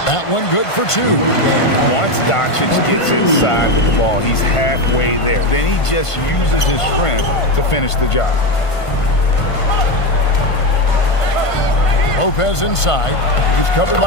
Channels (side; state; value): right; late; 1.5 ms